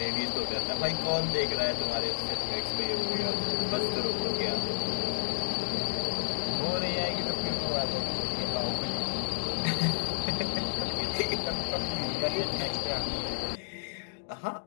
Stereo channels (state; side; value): silent; right; digital silence